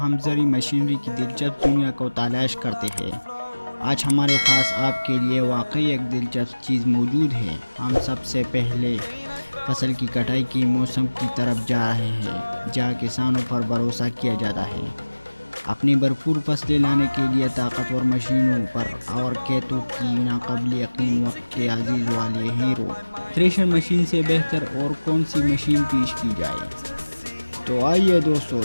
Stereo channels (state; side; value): inverted; both; correlation -1.00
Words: زرعی مشینری کی دلچسپ دنیا کو تلاش کرتے ہیں۔ آج ہمارے پاس آپ کے لیے واقعی ایک دلچسپ چیز موجود ہے۔ ہم سب سے پہلے فصل کی کٹائی کے موسم کی طرف جا رہے ہیں، جہاں کسانوں پر بھروسہ کیا جاتا ہے اپنی بھرپور فصلیں لانے کے لیے طاقتور مشینوں پر اور کھیتوں کی ناقابل یقین وقت کے عزیز والے ہیرو۔ تھریشر مشین سے بہتر اور کون سی مشین پیش کی جائے؟ تو آئیے دوستو